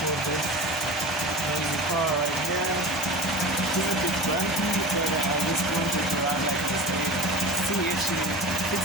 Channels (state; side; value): normal; both; correlation 0.33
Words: for this noisy car right here. It's a bit bumpy, but I just want it around like this. See if she